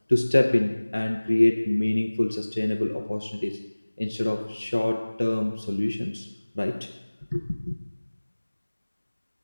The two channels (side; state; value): both; inverted; correlation -1.00